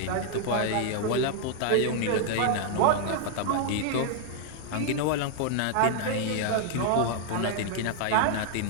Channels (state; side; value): different; both; correlation 0.00